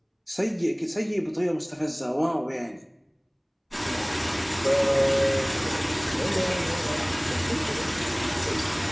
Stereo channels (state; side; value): identical; both; correlation 1.00